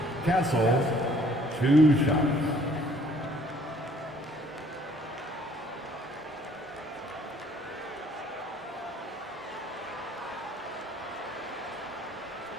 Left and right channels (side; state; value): both; normal; correlation 0.59